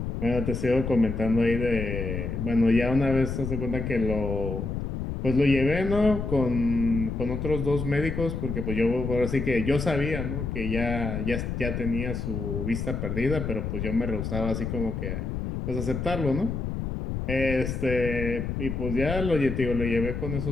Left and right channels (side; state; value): left; noise; rumble, 3 dB below the sound